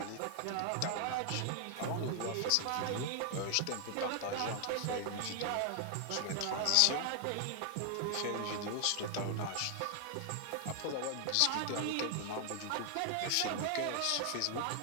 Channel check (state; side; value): different; both; correlation 0.00